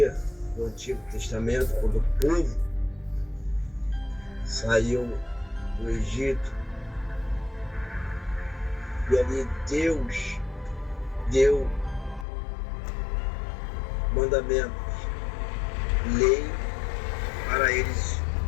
do Antigo Testamento, quando o povo saiu do Egito, e ali Deus deu mandamentos, lei para eles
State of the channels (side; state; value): right; drops out; at 12.2 s